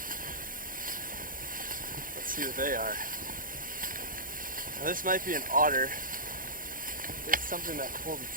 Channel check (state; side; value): late; left; 0.40 ms